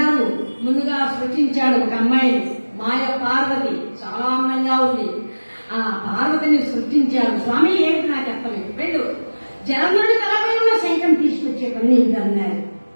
ముందుగా సృష్టించాడు ఒక అమ్మాయిని, మాయ పార్వతి, చాలా అందంగా ఉంది. ఆ పార్వతిని సృష్టించాడు. స్వామి ఏంటి నాకు అర్థమైంది, వెళ్ళు జలంధ్రుడి తలపై ఉన్న శంఖం తీసుకొచ్చే పని అన్నారు.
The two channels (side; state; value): both; inverted; correlation -1.00